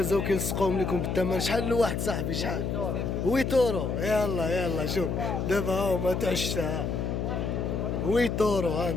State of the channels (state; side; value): noise; left; hum, 1 dB below the sound